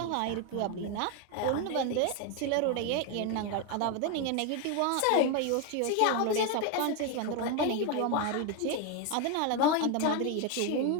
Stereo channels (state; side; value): different; both; correlation 0.01